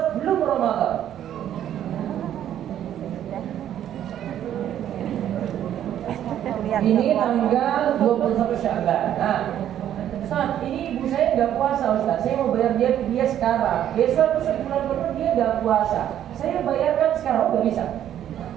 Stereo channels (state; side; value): quieter; left; 10.9 dB